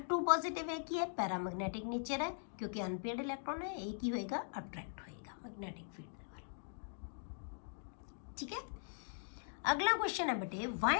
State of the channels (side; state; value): right; silent; digital silence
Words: 2 पॉजिटिव है की है पैरामैग्नेटिक नेचर है क्योंकि अनपेयर्ड इलैक्ट्रॉन है ये की होएगा अट्रैक्ट होएगा मैग्नेटिक फील्ड दे वाल ठीक है अगला क्वेश्चन है बेटे